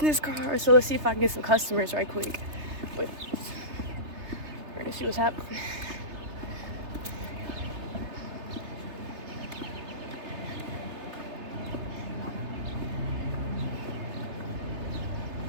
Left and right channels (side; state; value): left; late; 3.3 ms